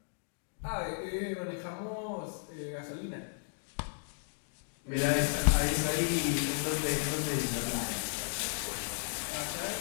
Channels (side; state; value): right; silent; digital silence